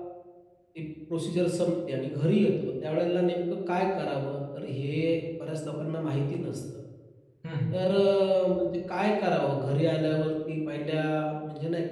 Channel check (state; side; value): identical; both; correlation 1.00